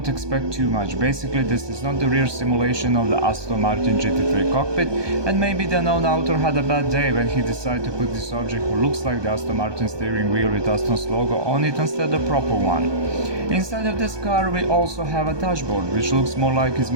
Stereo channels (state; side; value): late; left; 1.2 ms